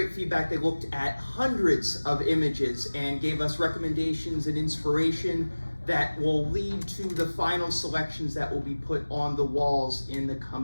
feedback. They looked at hundreds of images and gave us recommendations and inspiration that will lead to the final selections that will be put on the walls in the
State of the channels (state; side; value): inverted; both; correlation -1.00